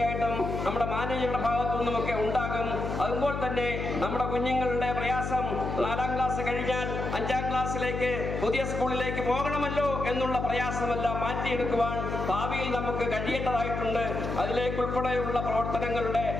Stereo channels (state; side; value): noise; left; hum, 4 dB below the sound